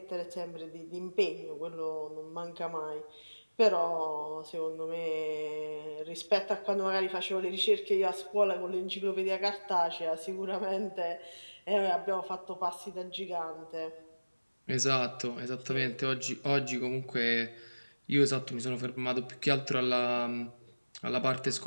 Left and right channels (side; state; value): both; inverted; correlation -1.00